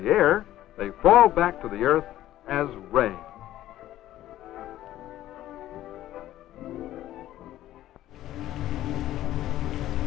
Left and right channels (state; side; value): quieter; right; 13.8 dB